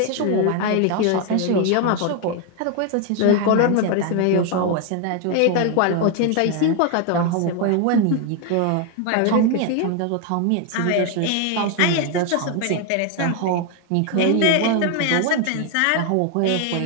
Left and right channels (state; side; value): different; both; correlation 0.01